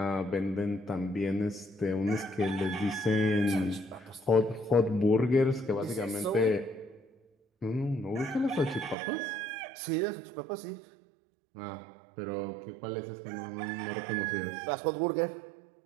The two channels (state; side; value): drops out; left; at 9.0 s